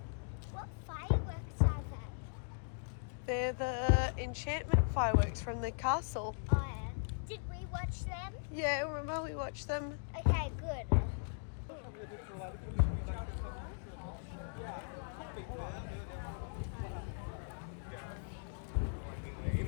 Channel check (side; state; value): right; silent; digital silence